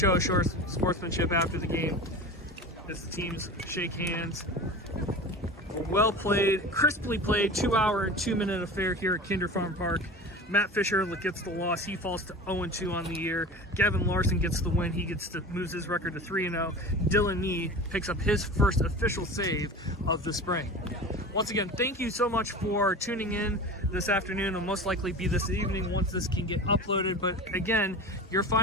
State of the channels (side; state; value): both; normal; correlation 0.33